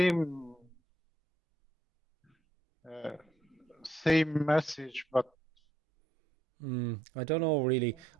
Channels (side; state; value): both; normal; correlation 0.73